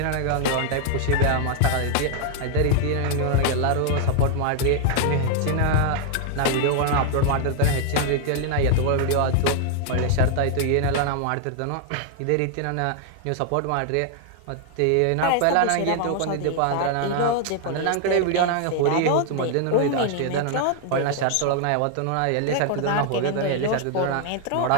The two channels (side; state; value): both; different; correlation 0.00